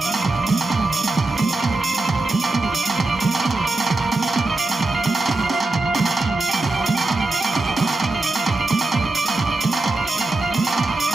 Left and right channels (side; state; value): left; quieter; 3.1 dB